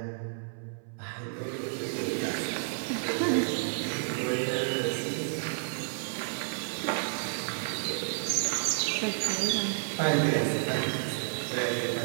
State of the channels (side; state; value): left; silent; 57 dB below the other